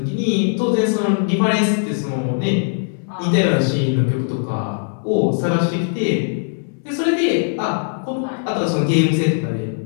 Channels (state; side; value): silent; right; 66 dB below the other